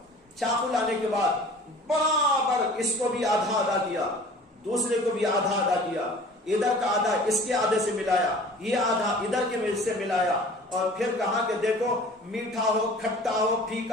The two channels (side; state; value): both; normal; correlation 0.45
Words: چاقو لانے کے بعد برابر اس کو بھی آدھا آدھا کیا، دوسرے کو بھی آدھا آدھا کیا، ادھر کا آدھا اس کے آدھے سے ملایا، یہ آدھا ادھر کے سے ملایا، اور پھر کہا کہ دیکھو میٹھا ہو کھٹا ہو